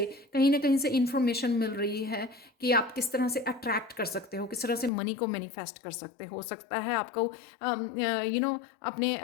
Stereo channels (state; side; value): drops out; right; at 4.9 s